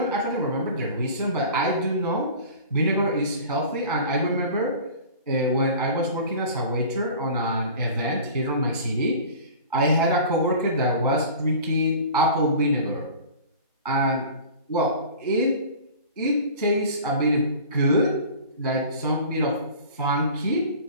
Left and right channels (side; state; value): both; inverted; correlation -0.40